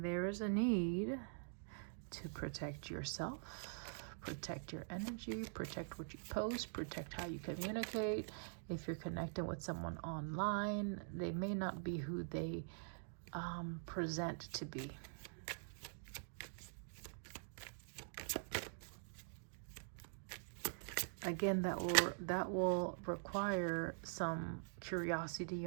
is a need to protect yourself, protect your energy, protect what you post, protect how you communicate. If you're connecting with someone online, they may not be who they present to be. Again, that will require some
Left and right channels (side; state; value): left; silent; digital silence